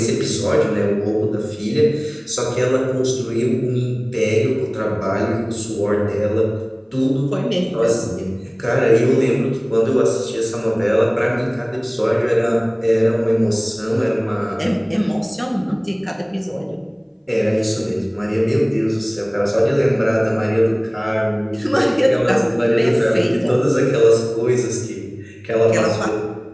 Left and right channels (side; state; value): both; identical; correlation 1.00